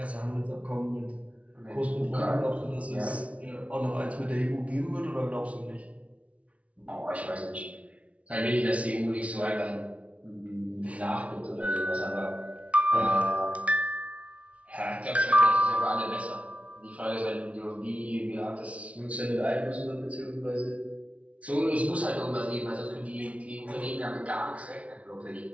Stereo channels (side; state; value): left; late; 0.065 ms